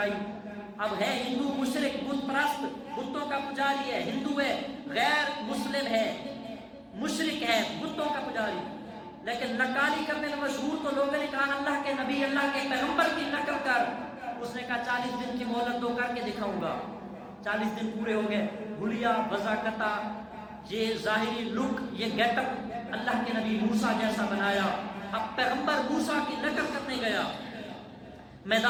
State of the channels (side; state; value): both; identical; correlation 1.00